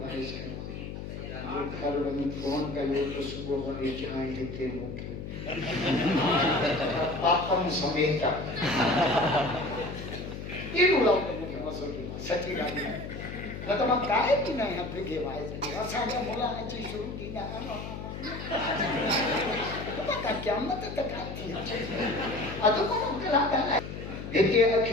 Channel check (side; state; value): left; noise; hum, 8 dB below the sound